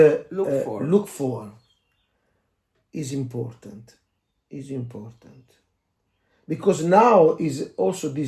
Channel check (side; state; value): both; identical; correlation 1.00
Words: look for is important. Because now is also